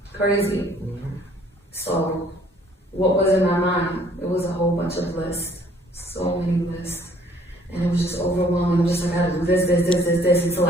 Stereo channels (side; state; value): both; normal; correlation 0.60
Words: crazy. So what was in my mind? It was a whole bunch of lists, so many lists. And it was just overwhelming. I'm just like, I gotta do this, until